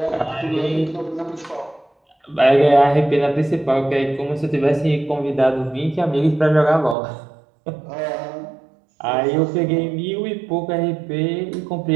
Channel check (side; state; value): left; drops out; at 7.0 s